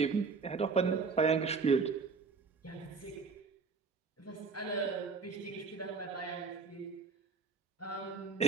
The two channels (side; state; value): left; quieter; 4.8 dB